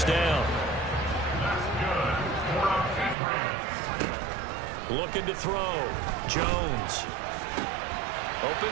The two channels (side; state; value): left; drops out; at 3.2 s